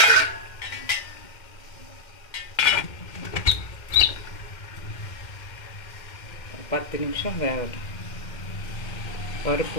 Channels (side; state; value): right; late; 2.1 ms